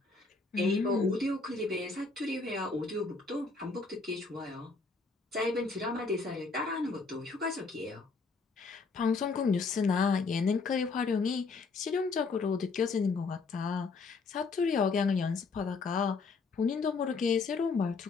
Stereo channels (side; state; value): right; quieter; 4.3 dB